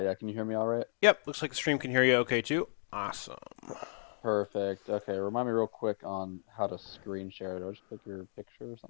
Can you hear me all right? Yep, looks like the stream can hear you okay too. Awesome. Perfect. Okay, remind me real quick on how to screen share. Do I just click your picture or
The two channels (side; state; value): right; silent; digital silence